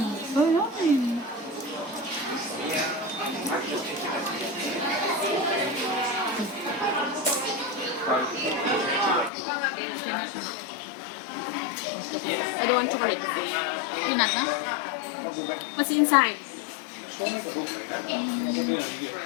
So yummy. I don't want chocolate. Peanut, huh? What's inside? It's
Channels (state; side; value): drops out; right; at 9.3 s